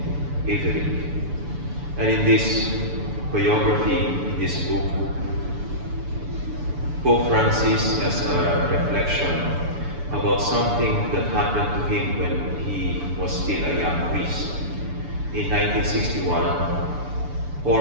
Everick. And in this biography, in this book, Pope Francis has a reflection about something that happened to him when he was still a young priest. In 1961,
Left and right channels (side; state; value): left; late; 6.9 ms